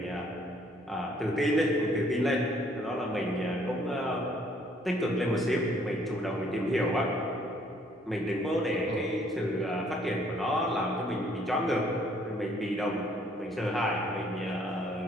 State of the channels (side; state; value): both; normal; correlation 0.63